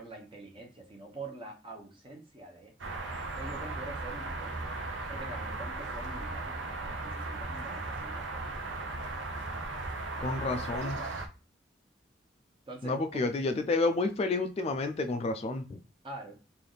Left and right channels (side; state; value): both; normal; correlation 0.38